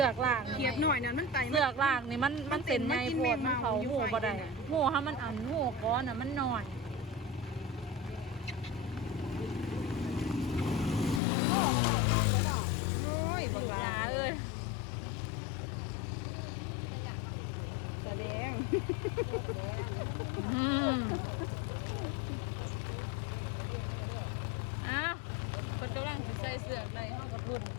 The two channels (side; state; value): right; drops out; at 11.2 s